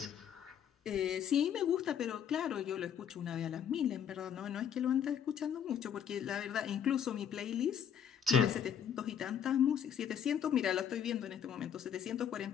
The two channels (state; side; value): quieter; right; 8.6 dB